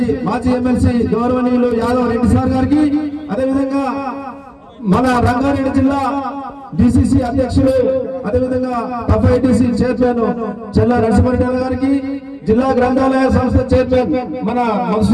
మాజీ ఎమ్మెల్సీ గౌరవనీయులు యాదవ్ రెడ్డి సార్ గారికి, అదేవిధంగా మన రంగారెడ్డి జిల్లా డిసిసి అధ్యక్షులు, అదేవిధంగా ఎఫ్ఐటిసి చైర్మన్ చెల్ల నరసింహారెడ్డి గారికి, జిల్లా గ్రంథాలయ సంస్థ చైర్మన్ మన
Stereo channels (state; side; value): identical; both; correlation 1.00